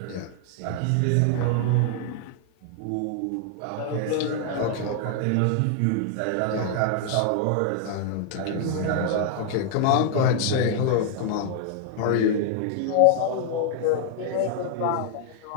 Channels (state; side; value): different; both; correlation 0.00